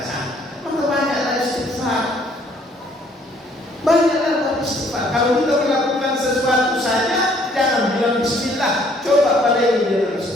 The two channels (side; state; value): both; normal; correlation 0.63